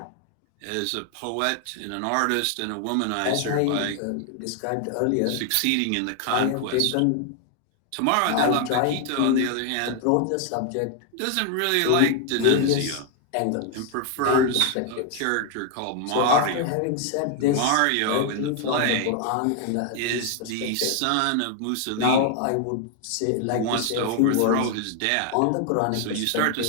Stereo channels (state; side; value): different; both; correlation 0.00